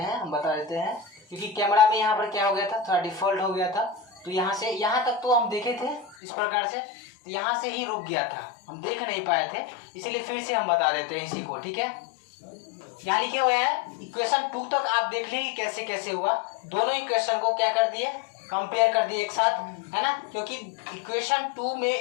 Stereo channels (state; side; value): drops out; right; at 6.2 s